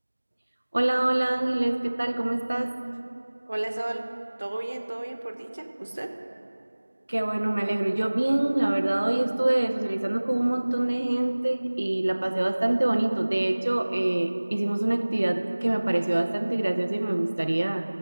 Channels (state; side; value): inverted; both; correlation -1.00